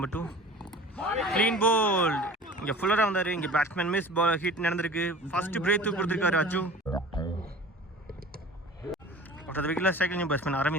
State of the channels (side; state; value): both; normal; correlation 0.42